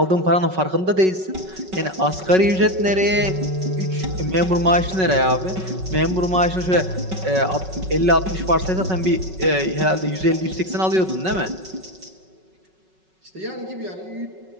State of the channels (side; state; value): left; late; 5.4 ms